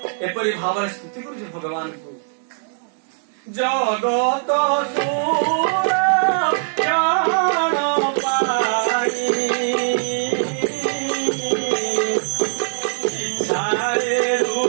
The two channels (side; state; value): left; silent; digital silence